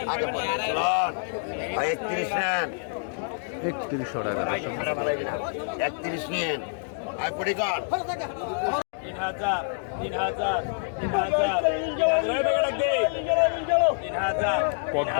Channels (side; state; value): right; silent; digital silence